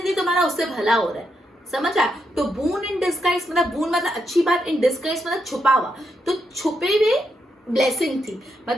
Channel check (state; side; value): normal; both; correlation 0.81